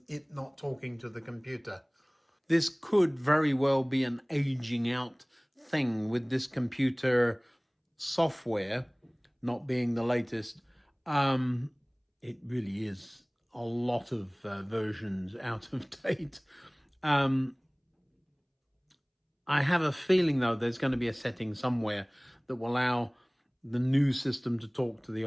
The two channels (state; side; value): identical; both; correlation 1.00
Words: it not talking to the computer. This could very well be an aging out thing with this computer software not being the latest. It really is a lot of versions out of date. I have a feeling, though, there's going to be a setting somewhere that will allow the new system to talk to the